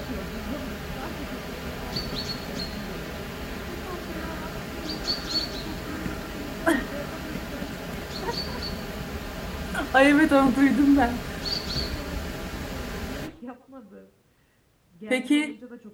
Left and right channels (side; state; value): both; identical; correlation 1.00